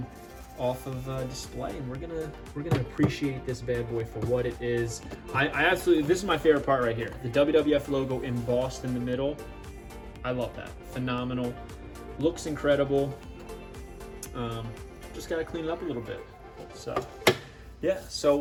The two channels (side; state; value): both; identical; correlation 1.00